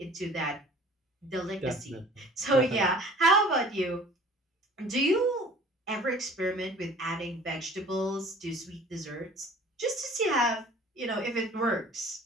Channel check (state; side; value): normal; both; correlation 0.47